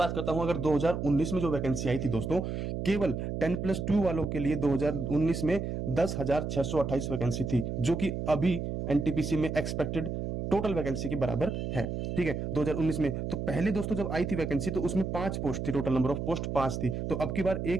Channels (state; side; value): noise; right; hum, 3 dB below the sound